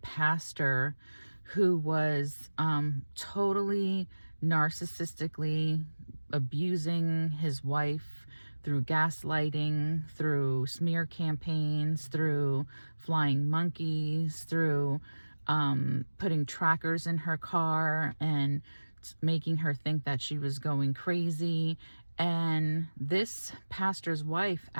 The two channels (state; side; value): inverted; both; correlation -1.00